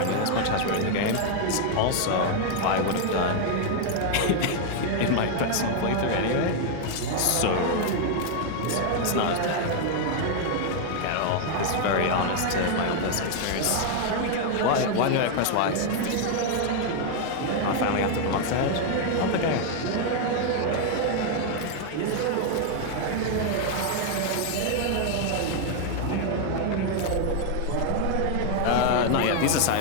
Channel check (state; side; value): different; both; correlation 0.00